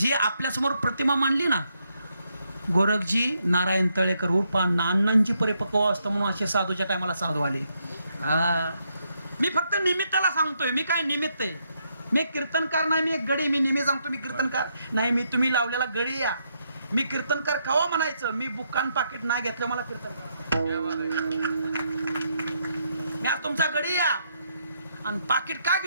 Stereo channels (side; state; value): both; inverted; correlation -0.77